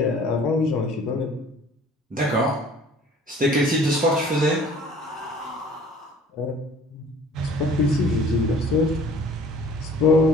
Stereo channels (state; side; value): normal; both; correlation 0.50